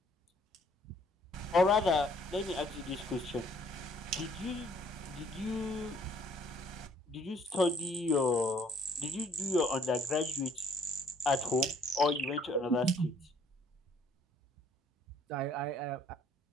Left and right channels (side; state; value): both; normal; correlation 0.60